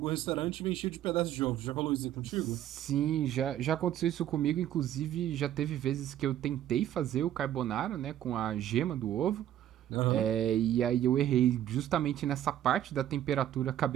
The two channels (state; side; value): quieter; left; 11.7 dB